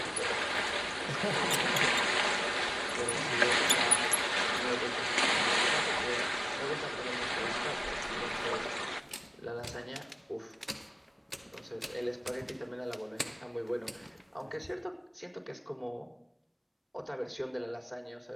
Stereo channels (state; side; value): identical; both; correlation 1.00